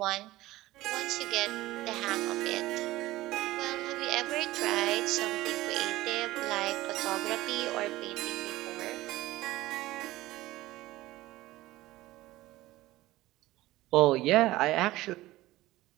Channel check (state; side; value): quieter; left; 17.3 dB